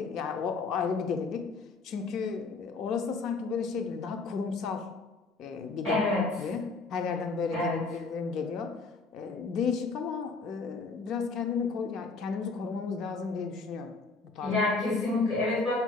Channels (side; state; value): right; quieter; 4.0 dB